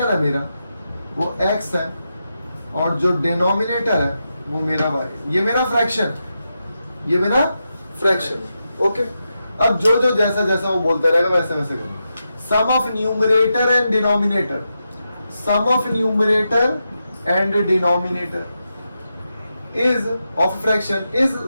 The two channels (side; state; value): both; inverted; correlation -0.87